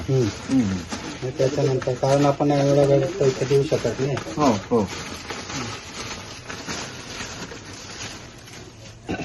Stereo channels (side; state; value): both; identical; correlation 1.00